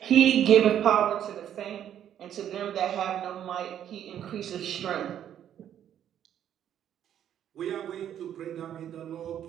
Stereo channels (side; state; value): left; quieter; 10.2 dB